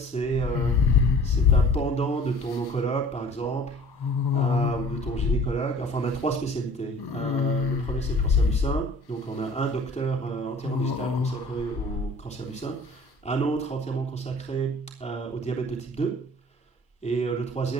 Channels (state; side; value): normal; both; correlation 0.48